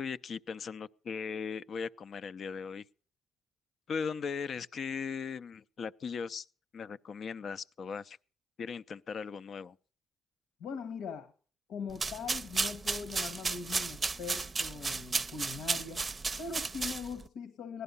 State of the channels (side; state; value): both; normal; correlation 0.82